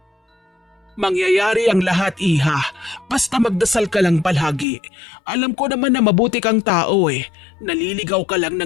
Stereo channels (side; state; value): right; drops out; at 4.7 s